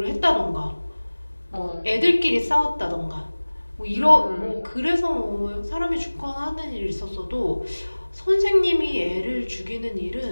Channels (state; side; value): inverted; both; correlation -1.00